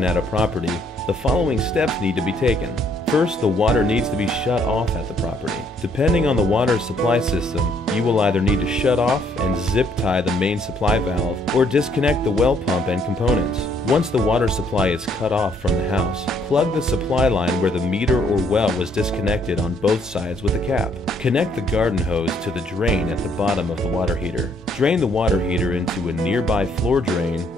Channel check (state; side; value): normal; both; correlation 0.67